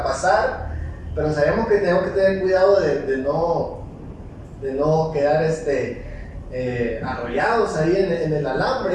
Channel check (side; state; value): both; identical; correlation 1.00